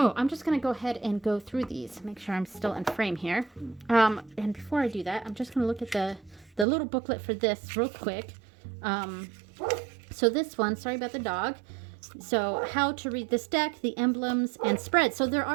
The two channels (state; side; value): drops out; left; at 6.7 s